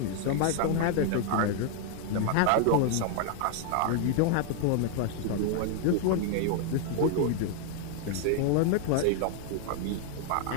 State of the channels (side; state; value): both; different; correlation 0.00